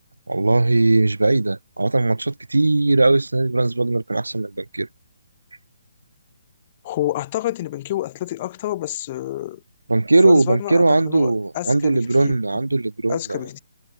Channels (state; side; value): inverted; both; correlation -0.94